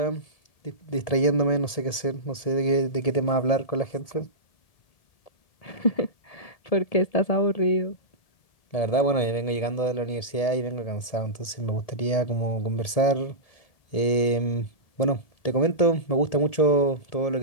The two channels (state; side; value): late; right; 1.7 ms